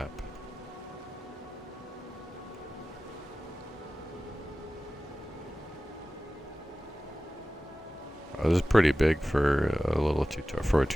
Oh, this is pretty big for a little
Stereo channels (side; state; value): both; normal; correlation 0.96